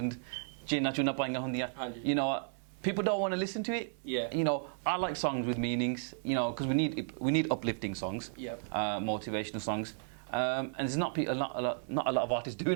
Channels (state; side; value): silent; left; 55 dB below the other